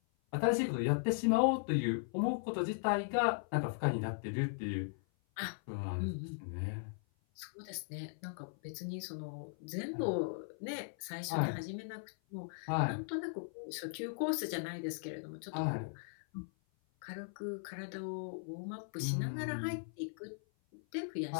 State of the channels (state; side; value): silent; right; 52 dB below the other